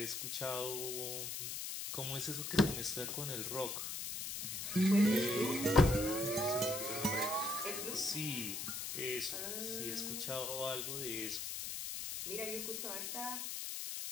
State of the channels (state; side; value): noise; left; hiss, 4 dB below the sound